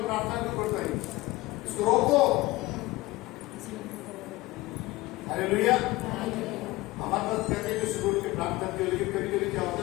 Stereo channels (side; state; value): right; quieter; 19.9 dB